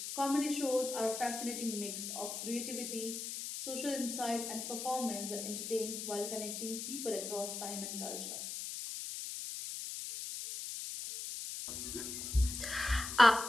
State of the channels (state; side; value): noise; left; hiss, 5 dB below the sound